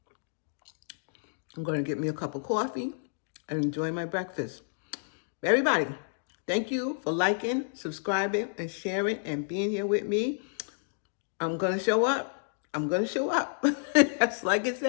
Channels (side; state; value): right; silent; digital silence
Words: going to get me a cup of coffee and enjoy my breakfast. Everybody, thank you for liking, subscribing, and sharing, and being here with me. I'm going to show up. I'm going to show up. That's like I